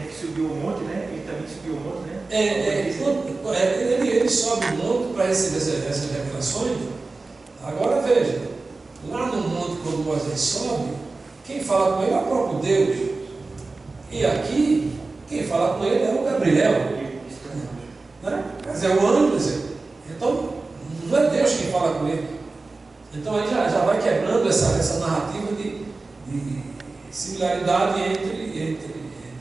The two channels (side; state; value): left; quieter; 3.6 dB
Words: que subiu o monte, né? Ele também subiu o monte, né? Ele sobe o monte para receber essas revelações. Agora veja, lá no monte, quando Moisés sobe, quem fala com ele é o próprio Deus. E aqui, quem fala com ele é o Gabriel. Né? Quer dizer, o anjo. Então, não é Deus quem fala com ele. Então aí já vai quebrando essa narrativa de similaridade entre